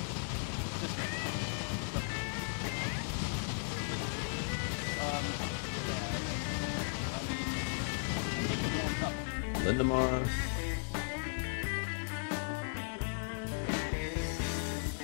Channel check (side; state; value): right; silent; digital silence